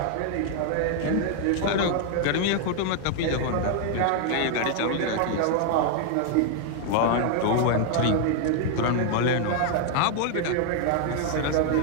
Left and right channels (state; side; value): different; both; correlation 0.00